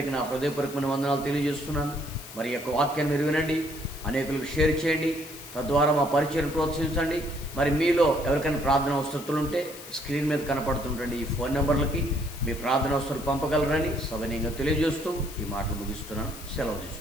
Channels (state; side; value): noise; left; hiss, 15 dB below the sound